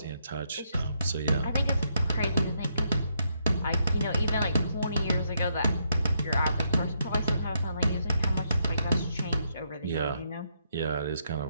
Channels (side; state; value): both; inverted; correlation -0.76